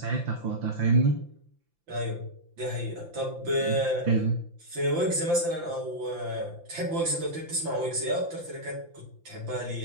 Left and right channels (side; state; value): left; late; 5.9 ms